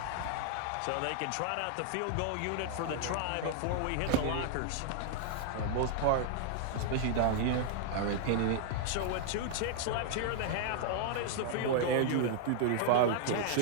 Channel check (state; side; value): different; both; correlation -0.01